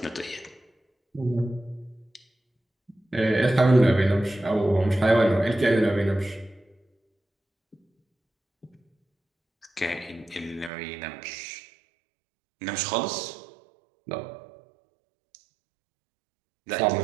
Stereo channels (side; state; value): left; drops out; at 10.7 s